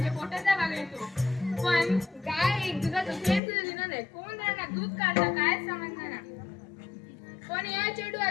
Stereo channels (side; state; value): right; drops out; at 3.4 s